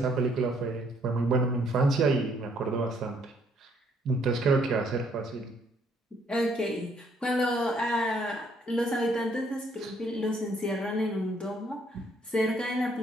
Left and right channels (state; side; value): normal; both; correlation 0.67